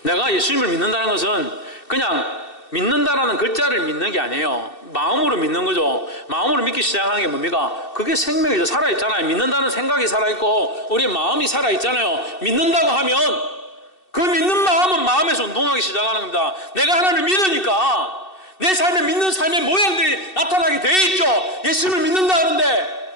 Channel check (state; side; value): late; right; 2.7 ms